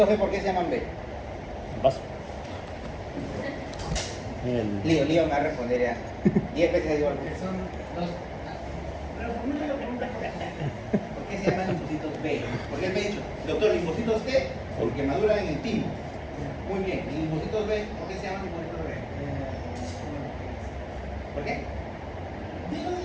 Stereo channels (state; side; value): identical; both; correlation 1.00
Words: B por qué se llaman B? En vaso. En el... Lío me va a responder ya. 10 veces igual. Que son dos. Pero formula la pregunta. ¿Por qué se llaman linfocitos B? Porque él me ha dicho, doctor, linfocitos T, porque maduran en el timo. Muy bien. ¿Y linfocitos B? ¿Por qué se llaman linfocitos B? ¿Por qué?